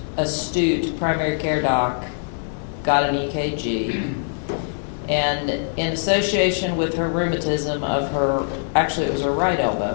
astute primary care doc got an EKG, and in association with her rheumatism of her, actually it was her right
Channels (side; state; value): right; silent; digital silence